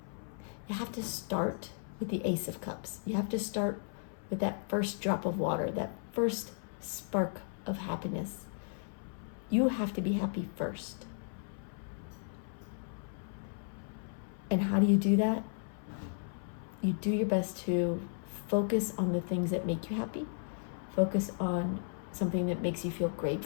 You have to start with the Ace of Cups. You have to start with that first drop of water, that first spark of happiness. You have to be happy first. And how do you do that? You do your best to focus on the things that make you happy. Focus on something that makes you feel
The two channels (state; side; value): silent; right; 54 dB below the other